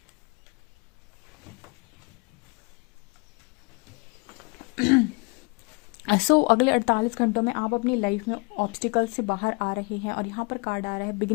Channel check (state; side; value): quieter; right; 31.1 dB